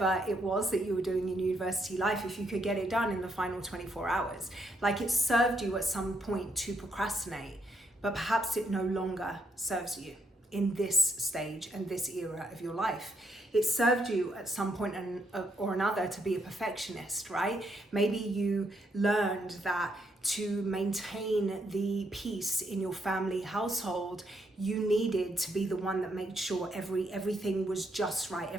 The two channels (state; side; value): normal; both; correlation 0.75